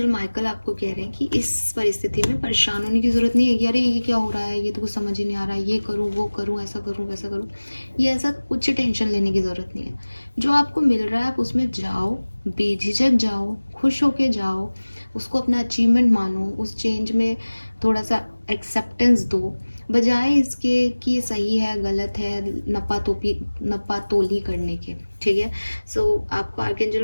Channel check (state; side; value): inverted; both; correlation -1.00